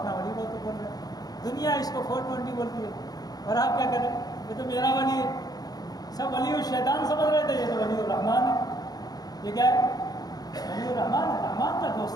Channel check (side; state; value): right; late; 0.19 ms